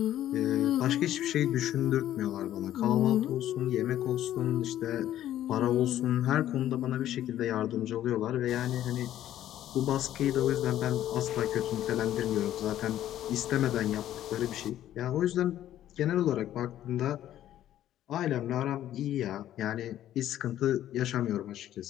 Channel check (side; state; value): right; quieter; 12.3 dB